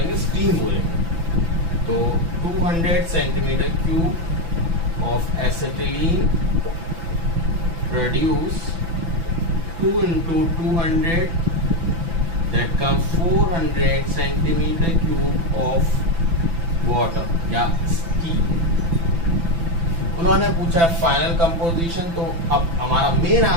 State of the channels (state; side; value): late; left; 6.0 ms